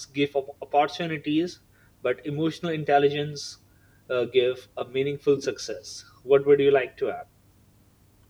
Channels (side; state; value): both; identical; correlation 1.00